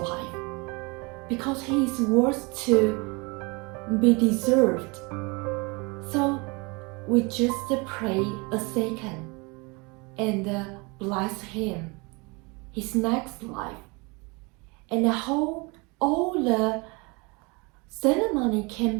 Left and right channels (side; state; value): left; quieter; 28.2 dB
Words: because he is worth to be deserved. So we just pray a second. and bless him his next life. And I hope all the ceremony